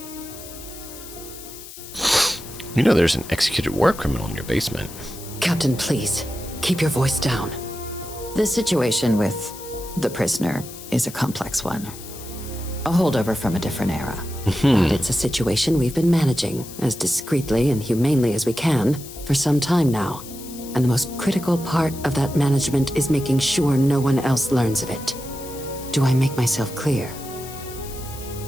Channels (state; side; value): noise; left; hiss, 15 dB below the sound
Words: You know there's an executed war criminal in your basement. Captain, please, keep your voice down. The situation with the prisoner is a complex one. A holdover from a different era. But it's a situation we've been managing as discreetly and humanely as we can for some time now. And the most critical part of that management is making sure no one else learns of it. Do I make myself clear?